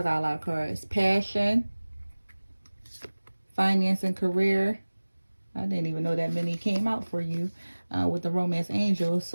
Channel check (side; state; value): both; inverted; correlation -1.00